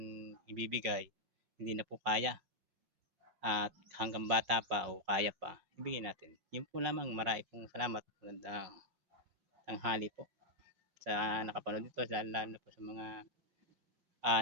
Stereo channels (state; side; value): late; left; 5.6 ms